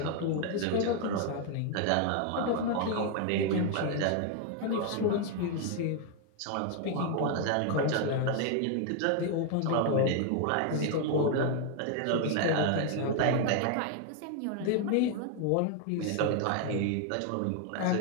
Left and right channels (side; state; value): both; different; correlation 0.00